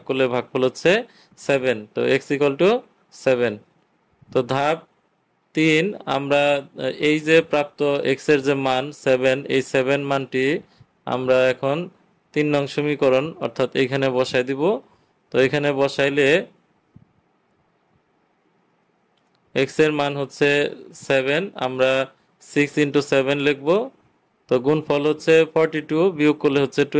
করলে ভাগফল হচ্ছে 7। তো x ইকুয়াল টু 7। তো ধাপ 3, আমরা এই যে প্রাপ্ত x এর যে মান 7, এই 7 মানটি আমরা এখন 3 নং সমীকরণ অর্থাৎ এখানে বসাই দিব। তো এখানে বসাইলে x এর মান হচ্ছে 7, আমরা 6 ইন্টু 7 লিখব। তো গুণফল হচ্ছে 42, বিয়োগ করলে হচ্ছে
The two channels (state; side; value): identical; both; correlation 1.00